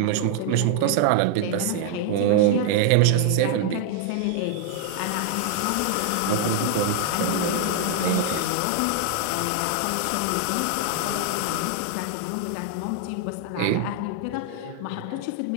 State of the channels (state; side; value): different; both; correlation 0.00